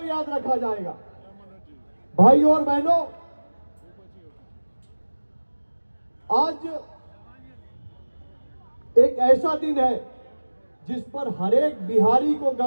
याद रखा जाएगा। भाई और बहनों, आज एक ऐसा दिन है जिस पर हर एक बिहारी को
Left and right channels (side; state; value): both; inverted; correlation -1.00